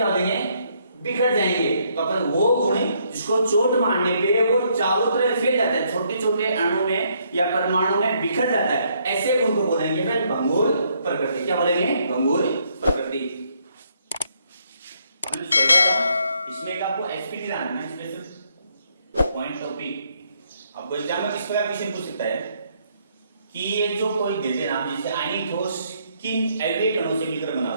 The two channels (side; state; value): both; inverted; correlation -0.71